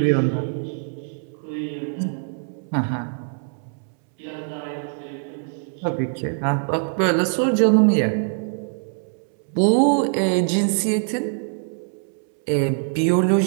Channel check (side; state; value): left; silent; 63 dB below the other